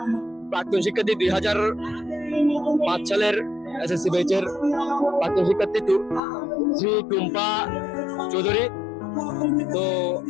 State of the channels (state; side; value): drops out; right; at 6.2 s